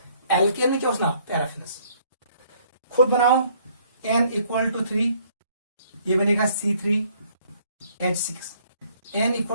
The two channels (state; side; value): inverted; both; correlation -0.62